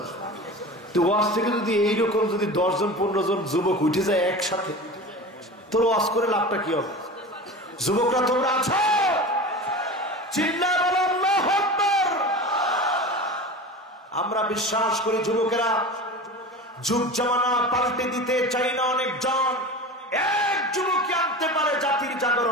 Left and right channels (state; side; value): normal; both; correlation 0.32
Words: তো ওয়াজ থেকে যদি এইরকম যদি 10 জন 15 জন যুবক উঠে যায় একসাথে, তোর ওয়াজ করে লাভটা কি হবে? যুবকরা তোমরা আছো? চিল্লায় বলো আল্লাহু আকবার। আমরা বিশ্বাস করি যুবকেরা যুগ জামানা পাল্টে দিতে চাই না, অনেকজন এক যুবককে আনতে পারে জাতির